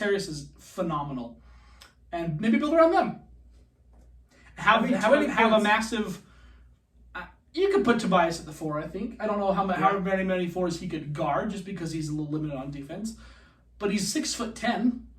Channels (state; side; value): identical; both; correlation 1.00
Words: is phenomenal. And maybe build around them. Have a massive... You could put Tobias at the 4, I think. I don't know how many 4s he could guard, just because he's a little limited on defense. But he's 6'10".